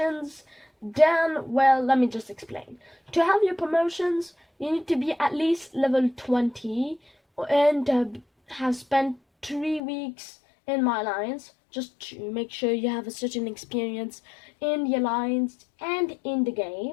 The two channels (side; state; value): right; drops out; at 9.8 s